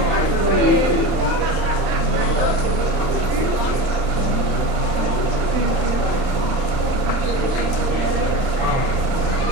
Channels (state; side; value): late; left; 30 ms